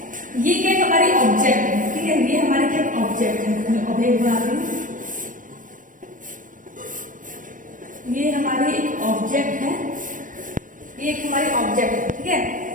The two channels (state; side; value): late; left; 0.38 ms